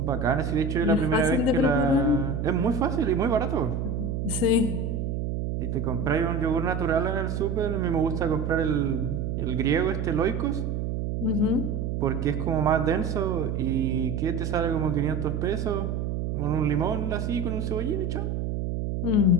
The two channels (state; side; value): noise; right; hum, 2 dB below the sound